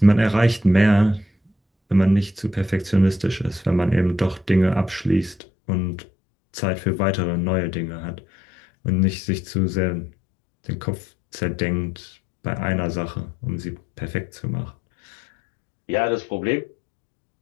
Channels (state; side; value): drops out; right; at 5.4 s